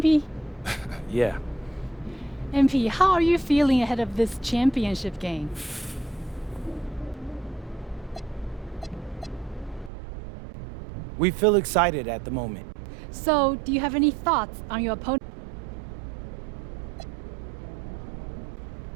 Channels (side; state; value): left; drops out; at 9.9 s